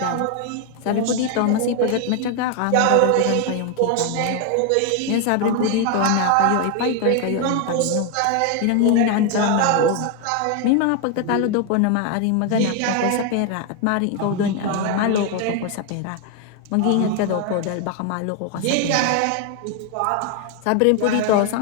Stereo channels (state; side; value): different; both; correlation 0.01